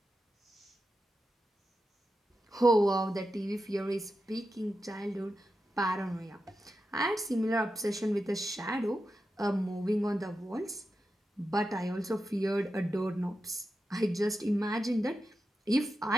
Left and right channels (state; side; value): normal; both; correlation 0.90